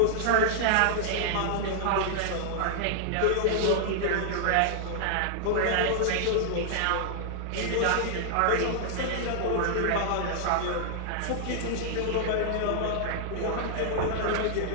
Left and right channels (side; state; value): both; different; correlation -0.01